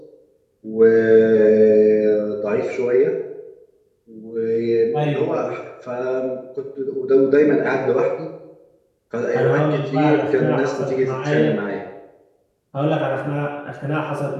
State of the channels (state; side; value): identical; both; correlation 1.00